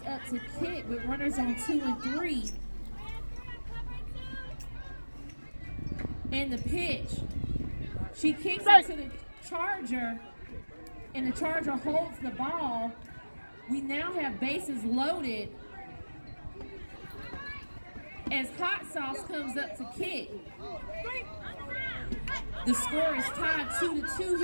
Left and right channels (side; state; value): both; inverted; correlation -1.00